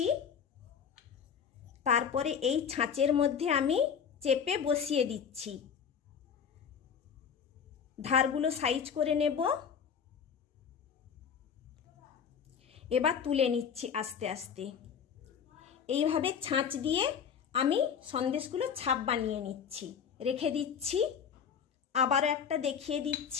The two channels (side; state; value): right; quieter; 7.3 dB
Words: তারপরে এই ছাঁচের মধ্যে আমি চেপে বসিয়ে দিচ্ছি। ধারগুলো সাইজ করে নেব। এবার তুলে নিচ্ছি আস্তে আস্তে। এইভাবে ছাঁচ দিয়ে আমি সন্দেশগুলো ছাপ বানিয়ে নিচ্ছি, রেখে দিচ্ছি। আবারও একটা দেখিয়ে